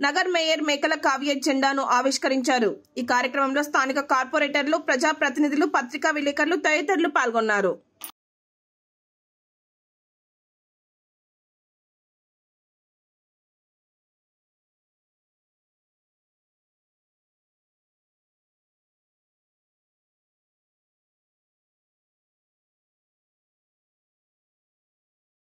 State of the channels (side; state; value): both; identical; correlation 1.00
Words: నగర్ మేయర్ మేకల కావ్య జెండాను ఆవిష్కరించారు। ఈ కార్యక్రమంలో స్థానిక కార్పొరేటర్లు, ప్రజా ప్రతినిధులు, పత్రికా విలేకరులు తదితరులు పాల్గొన్నారు।